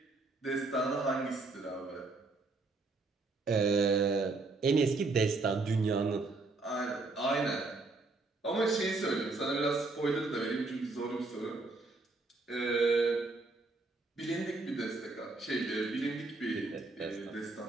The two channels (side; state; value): left; quieter; 3.5 dB